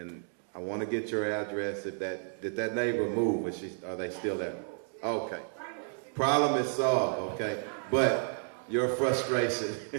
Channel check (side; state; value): left; silent; 57 dB below the other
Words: I want to get your address. Did that neighbor move? Are they still there? Okay. Problem is solved, okay? But your frustration,